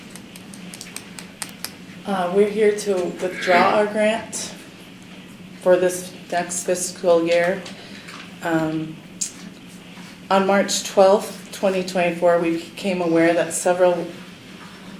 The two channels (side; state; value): both; identical; correlation 1.00